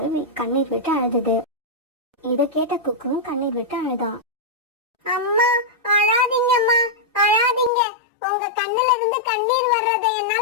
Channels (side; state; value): right; drops out; at 7.7 s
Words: கண்ணீர் விட்டு அழுதுது. இத கேட்ட குக்குவும் கண்ணீர் விட்டு அழுதான். அம்மா அழாதீங்கம்மா, அழாதீங்க. உங்க கண்ணுல இருந்து கண்ணீர் வர்றதை